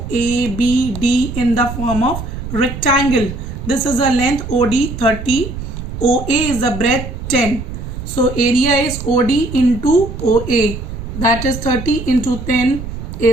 A, B, D in the form of rectangle. This is a length OD 30. OA is the breadth 10. So area is OD into OA. That is 30 into 10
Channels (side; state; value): right; noise; rumble, 8 dB below the sound